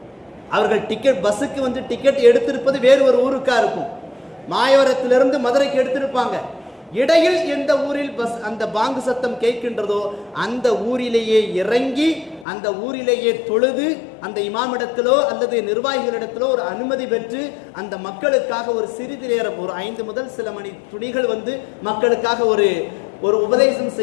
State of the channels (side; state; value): right; drops out; at 12.5 s